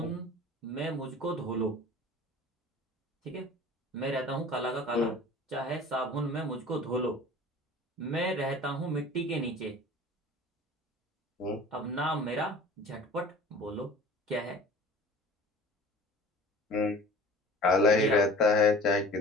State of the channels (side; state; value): both; normal; correlation 0.44